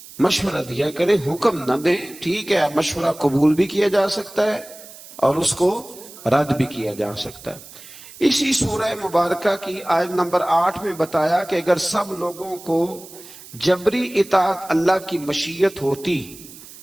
مشورہ دیا کریں، حکم نہ دیں۔ ٹھیک ہے، مشورہ قبول بھی کیا جا سکتا ہے اور اس کو رد بھی کیا جا سکتا ہے۔ اسی سورہ مبارکہ کی آیت نمبر 8 میں بتایا کہ اگر سب لوگوں کو جبری اطاعت اللہ کی مشیت ہوتی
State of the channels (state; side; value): noise; right; hiss, 18 dB below the sound